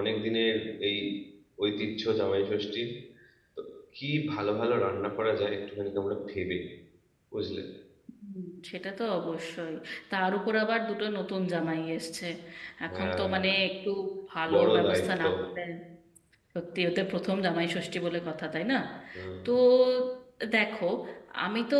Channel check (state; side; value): identical; both; correlation 1.00